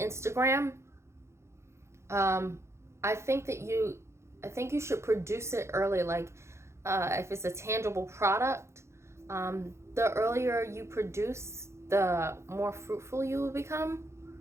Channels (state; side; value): late; left; 0.13 ms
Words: I think you should produce it early. Like if it's a tangible product, the earlier you produce, the more fruitful you will become.